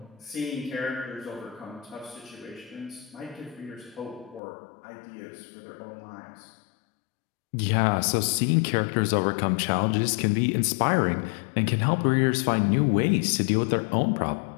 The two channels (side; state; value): right; drops out; at 4.4 s